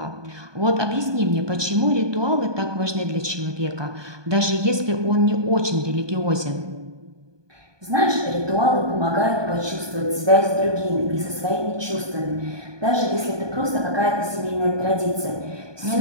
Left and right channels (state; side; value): late; left; 1.2 ms